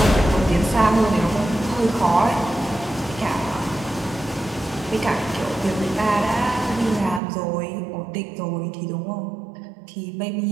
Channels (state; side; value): drops out; left; at 7.2 s